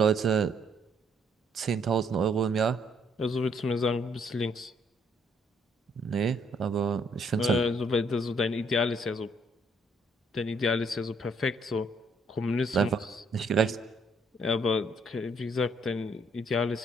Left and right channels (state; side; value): normal; both; correlation 0.67